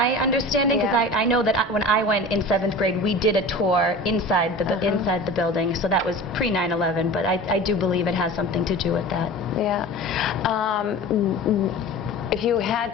understanding, because I know that when I went in 7th grade, we did a tour inside the building, so that was pre 9/11, but I do believe it has something to do with that. Yeah. If you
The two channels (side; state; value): both; normal; correlation 0.36